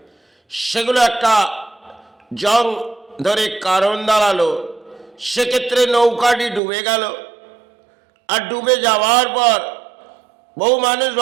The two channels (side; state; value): left; drops out; at 6.6 s